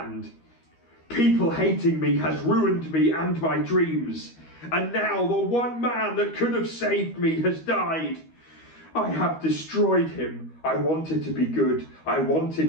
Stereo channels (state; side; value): late; right; 13 ms